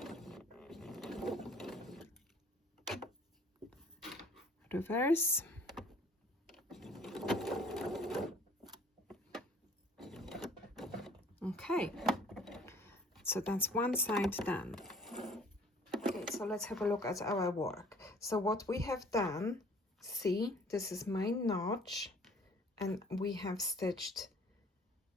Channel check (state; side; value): normal; both; correlation 0.53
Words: reverse. Okay, so that's one side done. Okay, so let's have a look at our work. So what we have done, see, this is my notch, and we have stitched